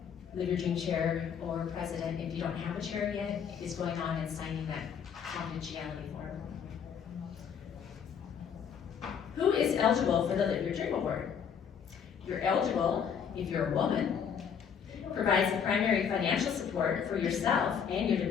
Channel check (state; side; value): quieter; right; 7.4 dB